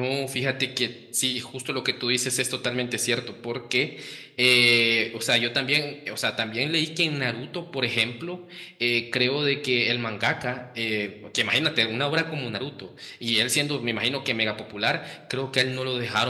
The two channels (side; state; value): both; identical; correlation 1.00